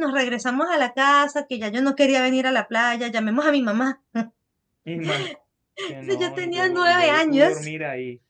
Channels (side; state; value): both; identical; correlation 1.00